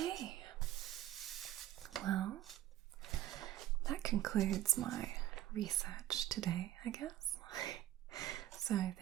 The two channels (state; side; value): quieter; left; 13.5 dB